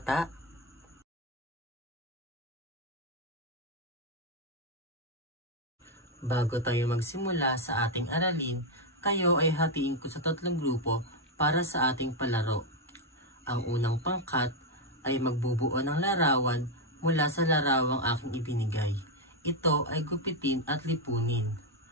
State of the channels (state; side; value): normal; both; correlation 0.03